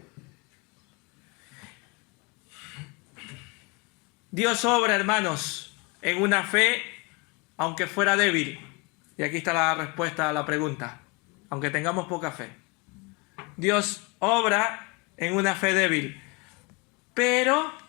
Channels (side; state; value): right; quieter; 28.1 dB